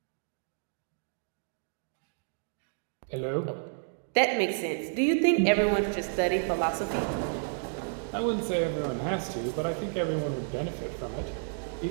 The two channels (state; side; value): silent; left; digital silence